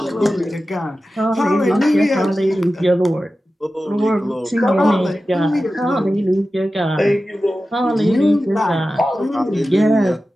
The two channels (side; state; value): both; normal; correlation 0.94